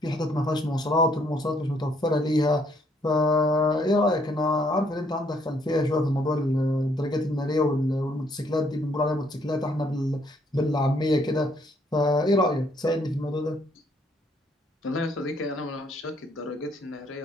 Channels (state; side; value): normal; both; correlation 0.68